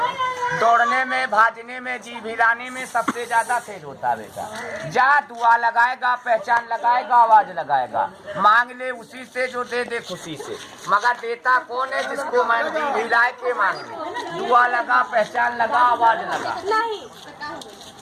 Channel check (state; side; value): identical; both; correlation 1.00